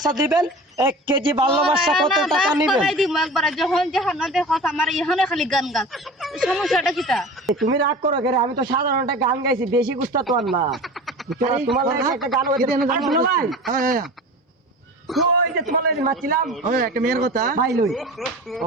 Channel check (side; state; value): both; normal; correlation 0.36